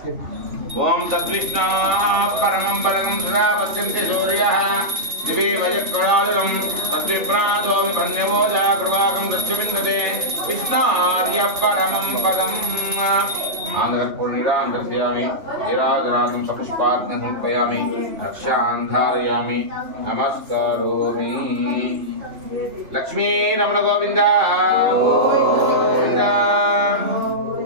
ఓం తద్విష్ణు పరమం పరమం సదా పశ్యంతి సూర్యః దివే వయః ప్రణాదనం తద్విప్రాదో ధన్యవోజా ప్రవాహం దక్షవిందతే విష్ణార్య పరమం పదం ఆంధ్రపూర్ణిరాంధ్రయామి నీరాజనాదం సపుష్పాగ్ని సమర్పయామి రక్షాంధారయామి నమస్కరోమి. లక్ష్మీ రమణ గోవింద గోవింద.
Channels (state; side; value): late; left; 3.4 ms